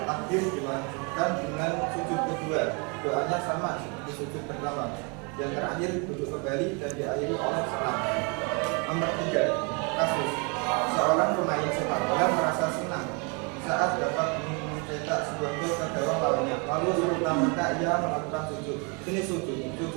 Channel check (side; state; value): left; quieter; 33.1 dB